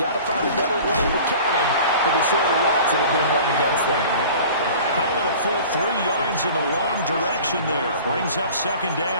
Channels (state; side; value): inverted; both; correlation -0.43